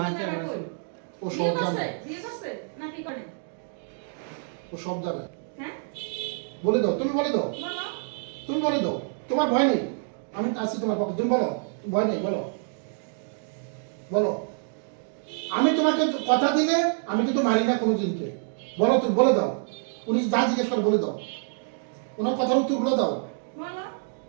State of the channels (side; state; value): left; silent; 60 dB below the other